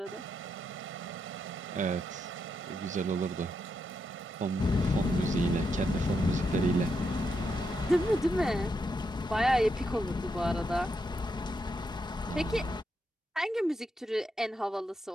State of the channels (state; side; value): normal; both; correlation 0.82